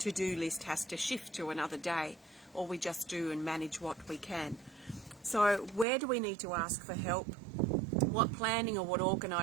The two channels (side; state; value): left; drops out; at 5.9 s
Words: list has to shift to another day, or we just do and manage what we can. So where do we need to ask for help? What planning or what